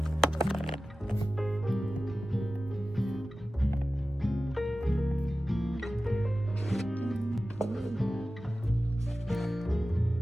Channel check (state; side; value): normal; both; correlation 0.95